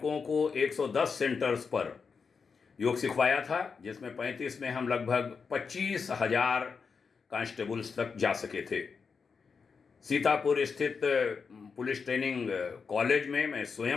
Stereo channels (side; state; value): right; quieter; 5.4 dB